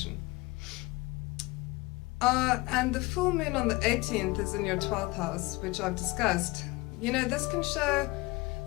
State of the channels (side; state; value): right; quieter; 22.2 dB